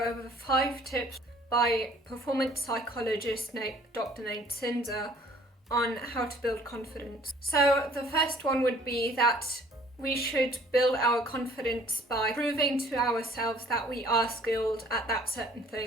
over 5 tips by performance psychologist Dr. Zinser on how to build confidence. So the first one would be that we should build our confidence by proving to ourselves that we are skilled at that certain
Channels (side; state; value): both; normal; correlation 0.56